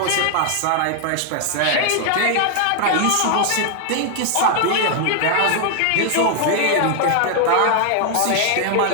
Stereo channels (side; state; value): both; different; correlation 0.00